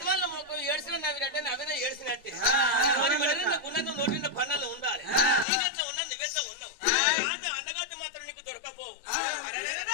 మొక్కం ఏడ్చిన నవ్వినట్టే నవ్విన ఏడ్చినట్టే మరి గుణంగా నోటిన పనులు ఉండాలి నీకెట్లా ఉన్నా నువ్వెట్లా ఉన్నావు అండగత్తి మాత్రం నీకు దొరకపోవు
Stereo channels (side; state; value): right; drops out; at 5.5 s